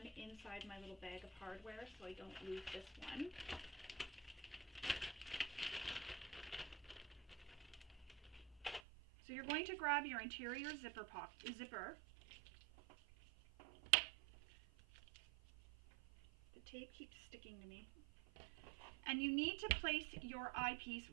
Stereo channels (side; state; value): left; drops out; at 8.8 s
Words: inside my little bag of hardware so I don't lose this one. So you're going to grab your interior zipper. The tape keeps sticking to me. And you need to place your eyepiece